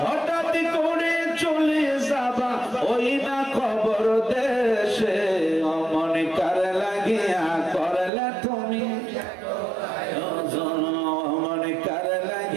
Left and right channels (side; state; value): left; drops out; at 8.1 s